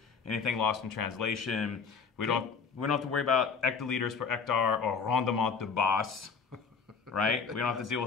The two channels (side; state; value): right; quieter; 5.6 dB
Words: anything lost in translation. We don't have to worry about hectoliters per hectare or rendement de base, right? We don't have to deal